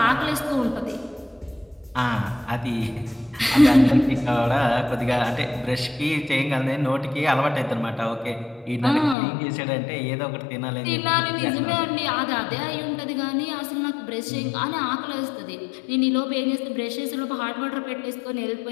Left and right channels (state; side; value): drops out; right; at 9.2 s